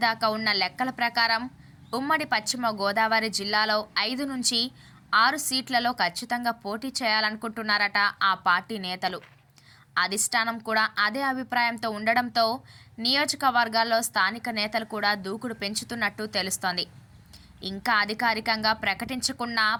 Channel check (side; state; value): both; identical; correlation 1.00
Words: ఉన్న లెక్కల ప్రకారం ఉమ్మడి పశ్చిమ గోదావరి జిల్లాలో 5 నుంచి 6 సీట్లలో ఖచ్చితంగా పోటీ చేయాలనుకుంటున్నారట ఆ పార్టీ నేతలు. అధిష్టానం కూడా అదే అభిప్రాయంతో ఉండడంతో నియోజకవర్గాల్లో స్థానిక నేతలు కూడా దూకుడు పెంచుతున్నట్టు తెలుస్తోంది. ఇంకా అధికారికంగా ప్రకటించకున్న